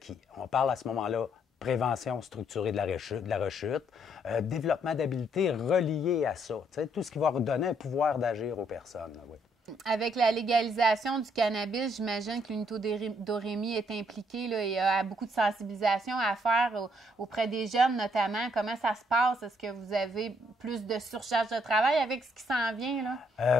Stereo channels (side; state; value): both; normal; correlation 0.70